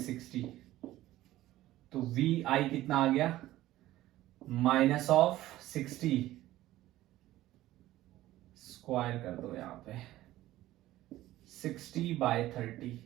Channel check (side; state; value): left; quieter; 15.4 dB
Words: तो वी आई कितना आ गया -60. स्क्वायर कर दो यहां पे, 60/30